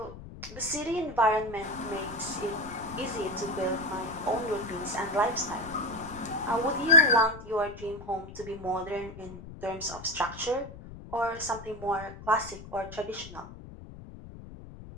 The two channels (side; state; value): left; noise; rumble, 14 dB below the sound